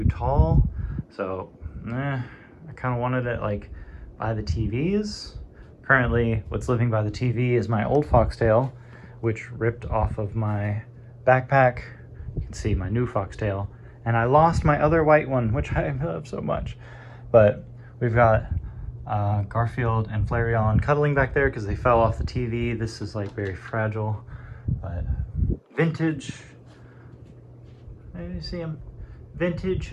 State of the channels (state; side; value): identical; both; correlation 1.00